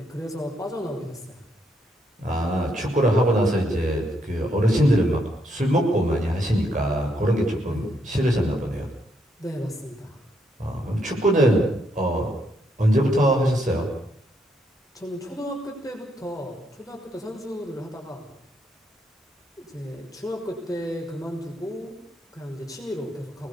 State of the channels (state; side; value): normal; both; correlation 0.76